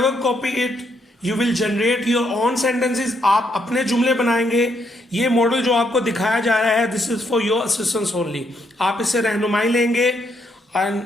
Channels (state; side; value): normal; both; correlation 0.75